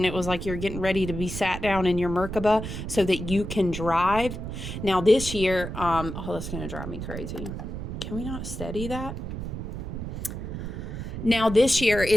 it was like you're getting ready to be sat down in your Merkaba so that you can drive. Now this year, that's going to drive me crazy. Can we not steady that? Now this year,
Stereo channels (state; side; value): noise; right; rumble, 6 dB below the sound